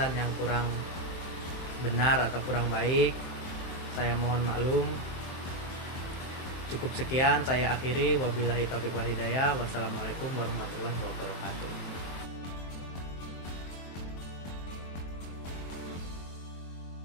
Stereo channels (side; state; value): right; late; 23 ms